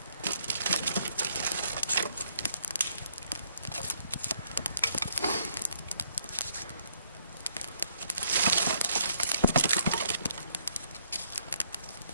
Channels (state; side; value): inverted; both; correlation -0.69